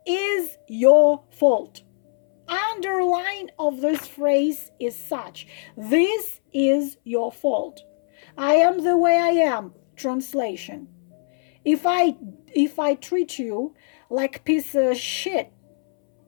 is your fault. Underline of this phrase is such. This is your fault. I am the way I am. Translation. If I treat you like piece of shit,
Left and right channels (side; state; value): right; silent; 63 dB below the other